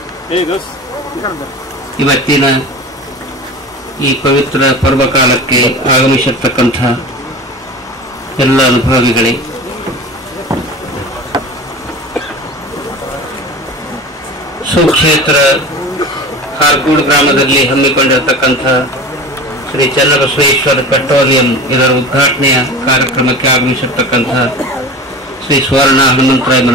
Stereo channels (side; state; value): both; normal; correlation 0.34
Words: ಇವತ್ತಿನ ಈ ಪವಿತ್ರ ಪರ್ವಕಾಲಕ್ಕೆ ಆಗಮಿಸಿರ್ತಕ್ಕಂಥ ಎಲ್ಲ ಅನುಭವಿಗಳೇ, ಸುಕ್ಷೇತ್ರ ಹಾರ್ಕೂಡ್ ಗ್ರಾಮದಲ್ಲಿ ಹಮ್ಮಿಕೊಂಡಿರತಕ್ಕಂಥ ಶ್ರೀ ಚನ್ನಬಸವೇಶ್ವರ ಪೆಟ್ರೋಲಿಯಂ ಇದರ ಉದ್ಘಾಟನೆಯ ಕಾರ್ಯಕ್ರಮಕ್ಕೆ ಆಗಮಿಸಿರ್ತಕ್ಕಂಥ ಶ್ರೀ ಸುವರ್ಣ ಹನುಮಂತರಾಯ